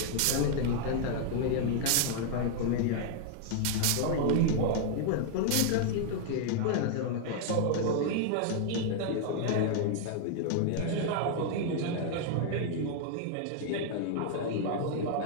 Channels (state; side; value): different; both; correlation 0.00